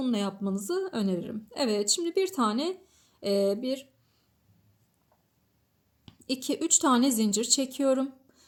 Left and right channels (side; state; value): both; identical; correlation 1.00